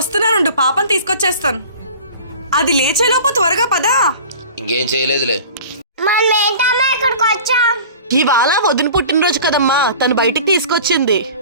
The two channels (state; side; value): inverted; both; correlation -0.41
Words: పాపను తీసుకొచ్చేస్తాను. అది లేచేలోపు త్వరగా పదా. ఇంకేం చేయలేదులే. ఇక్కడికి వచ్చాం. ఇవాళ వదిన పుట్టినరోజు కదమ్మా, తను బయటికి తీసుకొచ్చింది.